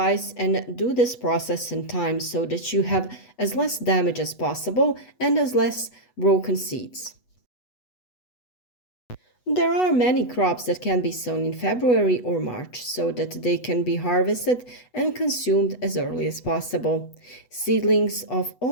and do this process in time so that you have as less damage as possible and as less broken seeds. There are many crops that can be sown in February or March so that they can be harvested and consumed as early as possible. Seedlings of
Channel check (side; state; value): right; late; 8.1 ms